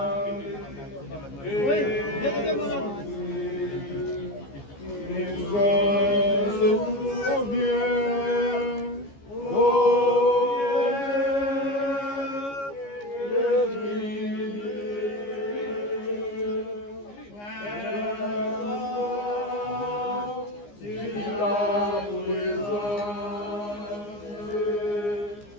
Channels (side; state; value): right; late; 15 ms